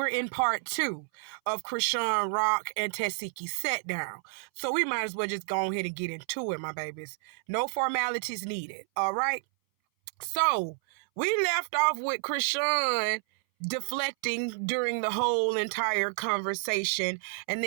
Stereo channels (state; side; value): silent; left; 58 dB below the other